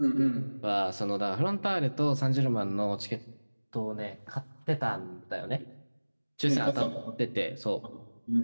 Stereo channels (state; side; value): inverted; both; correlation -1.00